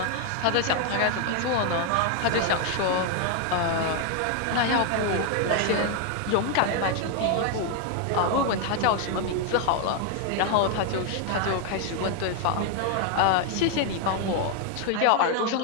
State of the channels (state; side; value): different; both; correlation 0.00